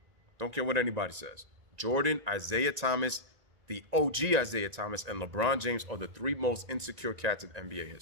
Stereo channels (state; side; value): late; left; 1.9 ms